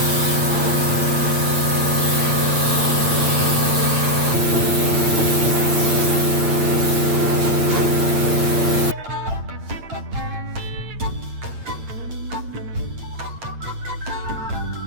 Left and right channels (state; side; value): late; left; 8.8 ms